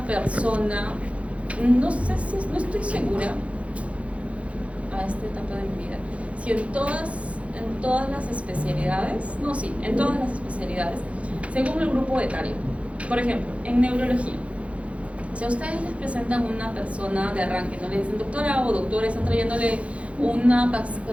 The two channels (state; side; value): late; left; 0.063 ms